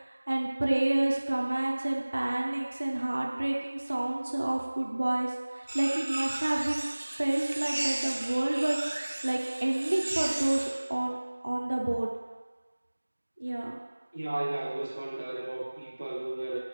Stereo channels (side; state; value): both; inverted; correlation -1.00